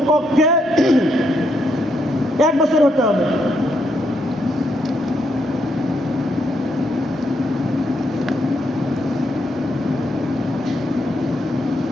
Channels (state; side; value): normal; both; correlation 0.78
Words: 1 বছর হতে হবে।